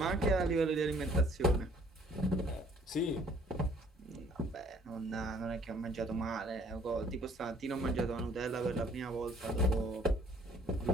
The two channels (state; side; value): normal; both; correlation 0.59